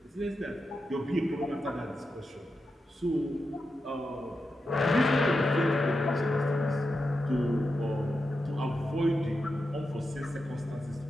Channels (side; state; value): both; normal; correlation 0.88